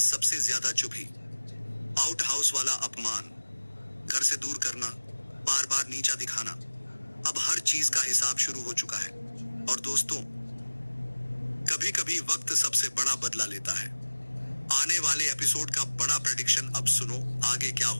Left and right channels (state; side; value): inverted; both; correlation -1.00